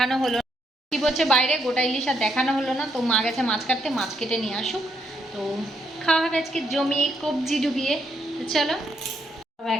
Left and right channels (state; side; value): normal; both; correlation 0.76